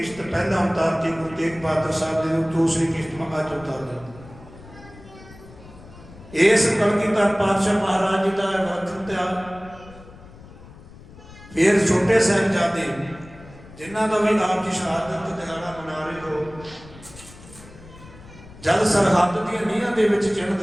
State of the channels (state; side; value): noise; left; rumble, 19 dB below the sound